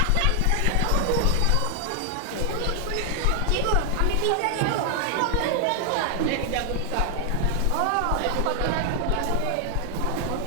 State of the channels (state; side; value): different; both; correlation 0.00